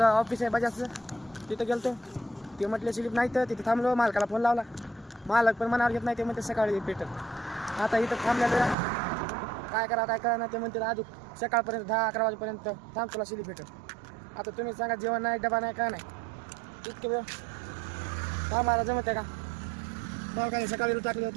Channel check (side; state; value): left; drops out; at 8.8 s